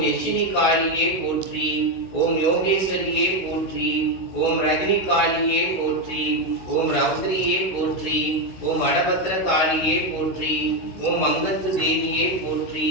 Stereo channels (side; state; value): right; late; 16 ms